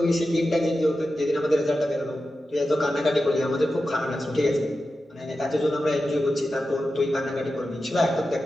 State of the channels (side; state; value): both; normal; correlation 0.91